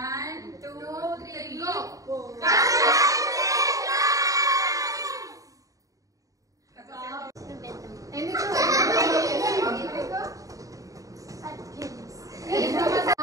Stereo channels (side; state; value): left; late; 0.16 ms